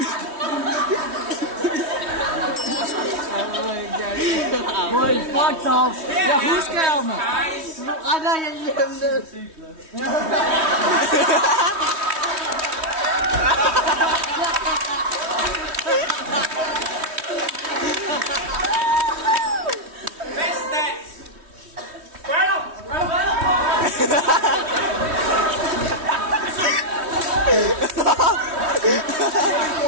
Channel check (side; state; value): left; late; 3.1 ms